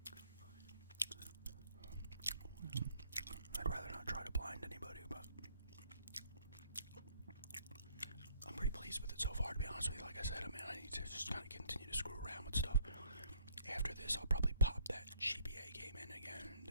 I'd rather not try to blind anybody, but I'm pretty pleased with it so far, to be honest with you. Like I said, I need to just kind of continue to screw around with stuff. After this, I'll probably pop that GBA game in again,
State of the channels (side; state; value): both; inverted; correlation -0.61